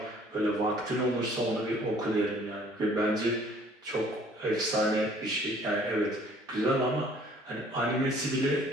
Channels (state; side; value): normal; both; correlation 0.56